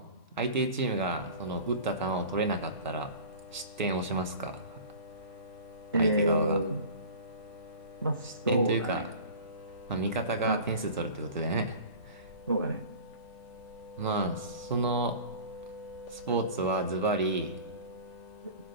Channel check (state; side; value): inverted; both; correlation -0.39